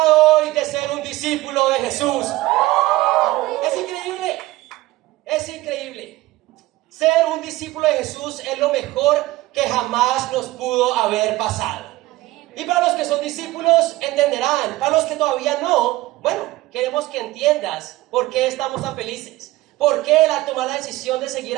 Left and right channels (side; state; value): left; quieter; 18.1 dB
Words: hoy de ser un discípulo de Jesús? Es increíble. Es increíble. Ser un discípulo de Jesús es lo mejor que jamás nos pudo haber pasado. Y para los que son discípulos entenderán. Para los que todavía no, bueno, queremos que entiendas por qué estamos tan felices. Por qué tomar la decisión de seguir